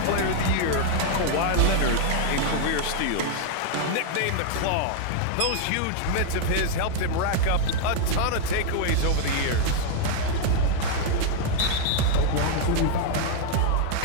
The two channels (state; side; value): different; both; correlation 0.00